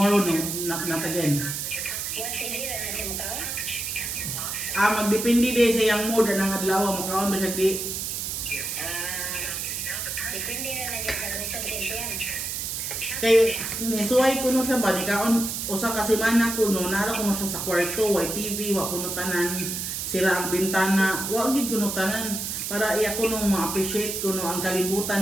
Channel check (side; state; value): right; noise; hiss, 3 dB below the sound